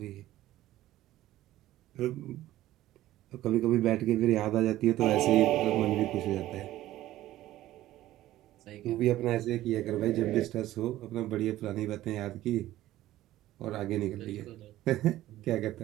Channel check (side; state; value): left; quieter; 14.9 dB